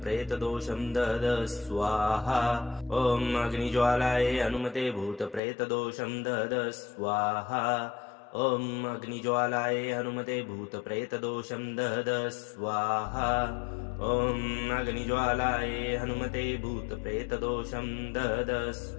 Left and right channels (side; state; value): right; drops out; at 5.4 s